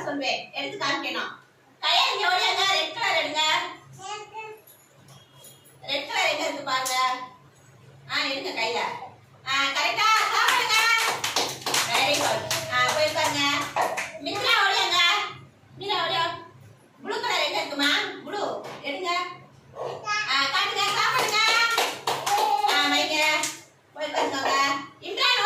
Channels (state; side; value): identical; both; correlation 1.00